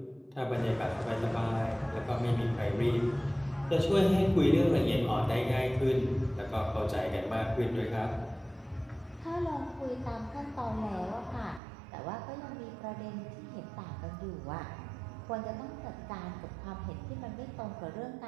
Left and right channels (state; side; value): drops out; left; at 11.6 s